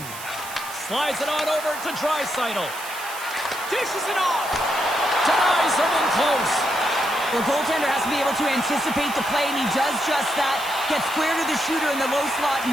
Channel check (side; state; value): right; noise; hiss, 12 dB below the sound